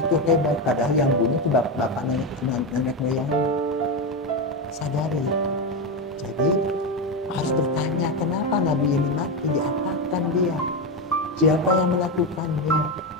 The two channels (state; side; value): normal; both; correlation 0.12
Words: hebat, padahal yang bunuh itu bapak nenek moyang. Sadari itu. Jadi harus bertanya, kenapa nabi ini mati, diapakan dia, siapa yang melakukannya.